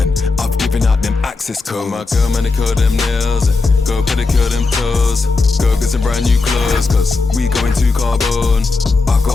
I've given out them access codes. My girl, man, they curl them nails. Go pedicure them toes. Go get some brand new clothes, cause we going to carbon. I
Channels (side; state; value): right; quieter; 3.9 dB